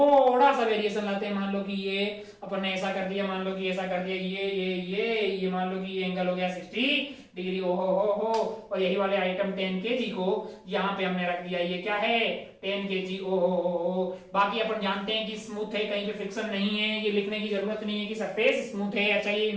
सा वेरिएशन लाते हैं। मान लो कि ये अपन ने ऐसा कर दिया, मान लो कि ऐसा कर दिया, ये मान लो कि ये एंगल हो गया 60 डिग्री, हो और यही वाले आइटम 10 kg को यहाँ पे हमने रख दिया, ये क्या है 10 kg, ओ। बाकी अपन जानते हैं कि स्मूथ है, कहीं पे फ्रिक्शन नहीं है, ये लिखने की जरूरत नहीं है कि सरफेस स्मूथ है। अच्छा, ये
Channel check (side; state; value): both; identical; correlation 1.00